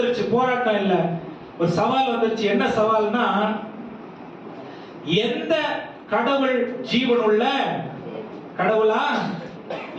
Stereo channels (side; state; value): both; identical; correlation 1.00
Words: போராட்டம் இல்ல, ஒரு சவால் வந்துருச்சு. என்ன சவால்னா, எந்த கடவுள் ஜீவனுள்ள கடவுளா